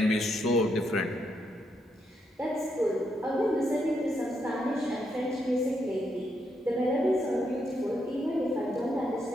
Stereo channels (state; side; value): normal; both; correlation 0.79